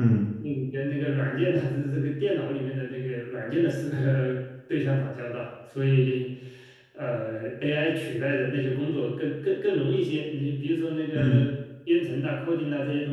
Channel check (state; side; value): identical; both; correlation 1.00